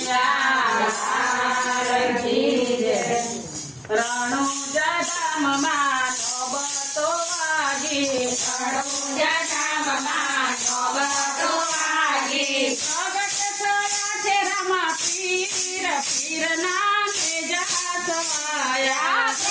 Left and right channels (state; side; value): identical; both; correlation 1.00